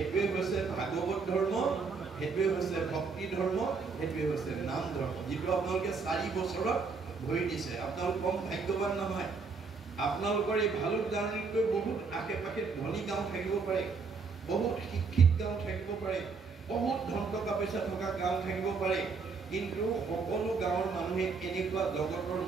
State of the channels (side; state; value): left; quieter; 4.8 dB